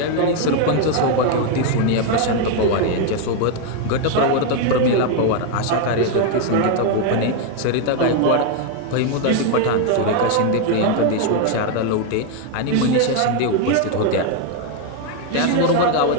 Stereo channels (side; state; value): both; different; correlation 0.01